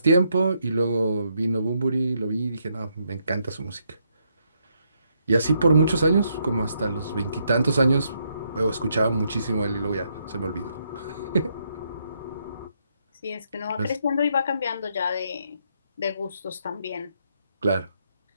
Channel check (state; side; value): inverted; both; correlation -0.76